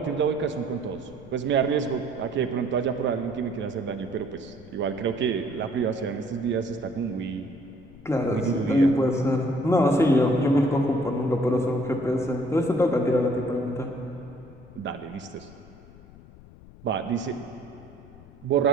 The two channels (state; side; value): noise; left; rumble, 21 dB below the sound